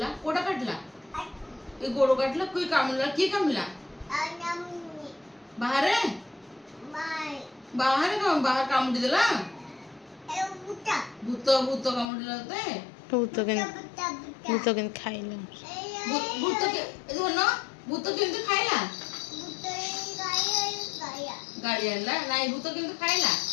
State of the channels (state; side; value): drops out; right; at 12.1 s